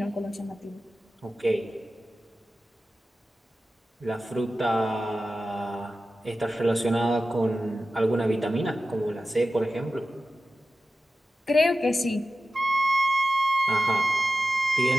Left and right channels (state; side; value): normal; both; correlation 0.94